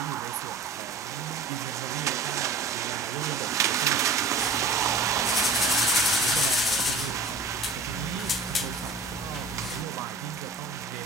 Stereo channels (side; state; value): left; quieter; 3.7 dB